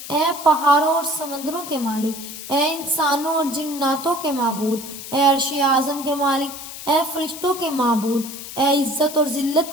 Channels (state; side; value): noise; left; hiss, 11 dB below the sound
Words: اے پہاڑوں اور سمندروں کے مالک، اے انسانوں اور جناتوں کے معبود، اے عرش اعظم کے مالک، اے فرشتوں کے معبود، اے عزت اور